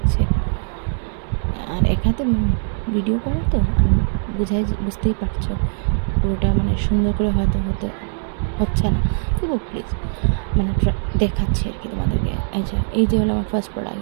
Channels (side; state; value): left; silent; 61 dB below the other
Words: আর এক হাতে ভিডিও করা তো আমি বুঝতেই পারছো, পুরোটা মানে সুন্দর করে হয়তো হচ্ছে না। তবু প্লিজ মানে দেখাচ্ছি আর কি তোমাদেরকে। আচ্ছা, এই যে হলো আমার ফার্স্ট প্রোডাক্ট।